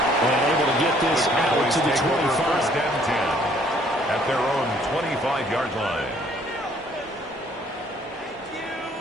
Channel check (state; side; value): normal; both; correlation 0.62